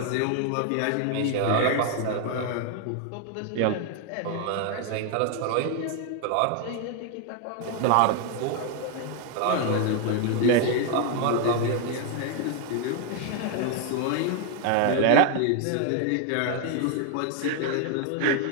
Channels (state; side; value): different; both; correlation 0.00